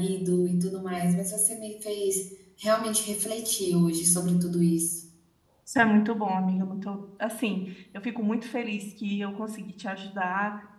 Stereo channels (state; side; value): identical; both; correlation 1.00